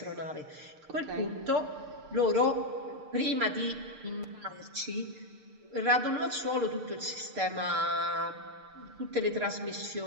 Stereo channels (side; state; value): left; late; 6.6 ms